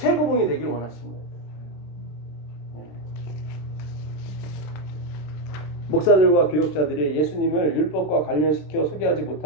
되길 원하시는 거예요. 목사들과 교역자들이 예수님을 율법과 관련시켜 소개하지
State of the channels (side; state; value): right; late; 27 ms